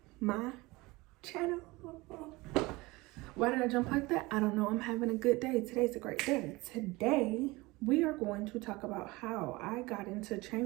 my channel. Why did I jump like that? I don't know. I'm having a good day. Today's a great day. Today we are going to talk about how I got into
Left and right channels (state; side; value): quieter; left; 22.1 dB